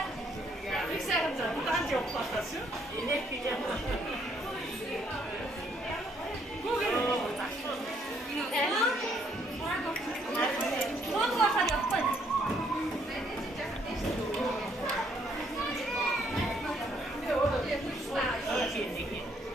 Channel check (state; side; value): normal; both; correlation 0.68